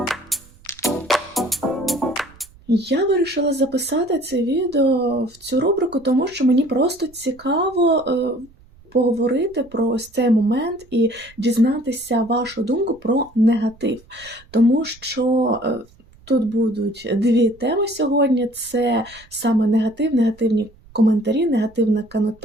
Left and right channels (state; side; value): noise; right; rumble, 26 dB below the sound